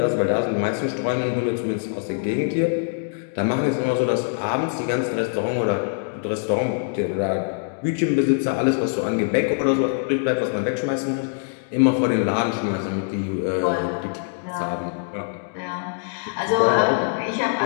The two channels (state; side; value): silent; right; digital silence